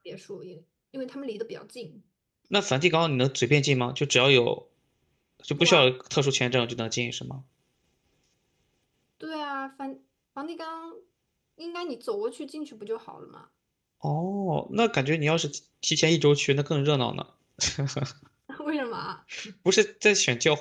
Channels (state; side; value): identical; both; correlation 1.00